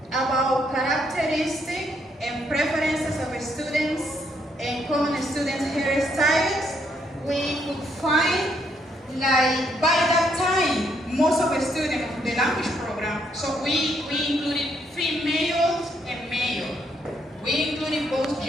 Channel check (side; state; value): both; normal; correlation 0.73